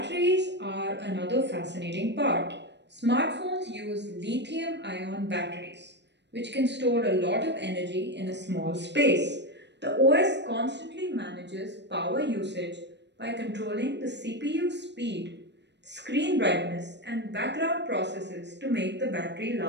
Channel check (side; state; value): left; late; 0.51 ms